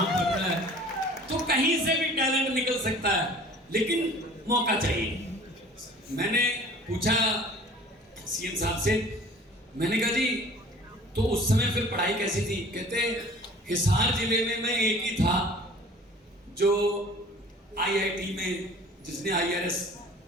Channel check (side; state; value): both; normal; correlation 0.47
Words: पढ़ रहा है, तो कहीं से भी टैलेंट निकल सकता है, लेकिन मौका चाहिए। मैंने पूछा CM साहब से, मैंने कहा जी तो उस समय फिर पढ़ाई कैसी थी? कहते हिसार जिले में मैं एक ही था जो IIT में जिसने IRS